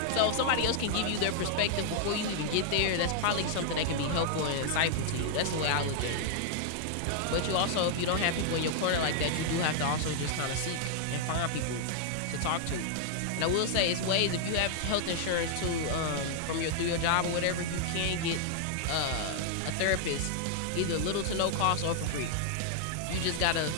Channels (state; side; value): different; both; correlation 0.00